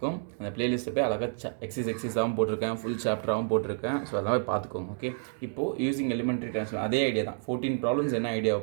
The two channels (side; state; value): left; silent; digital silence